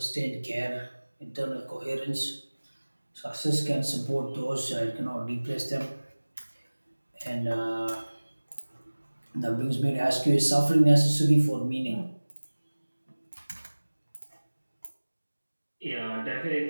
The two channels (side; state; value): both; inverted; correlation -1.00